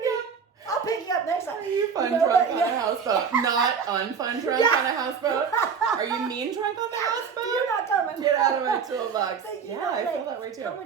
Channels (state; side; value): quieter; left; 6.4 dB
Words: I'll pick you up next time. Are you fun drunk on a houseboat? Not unfun drunk on a houseboat? Are you mean drunk on the houseboat? You're not coming. Get out of my toolbox. But I feel that way too. How